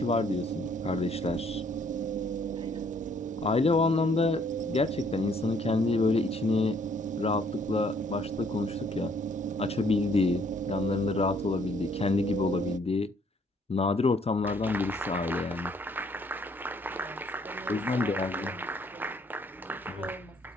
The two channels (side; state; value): both; normal; correlation 0.64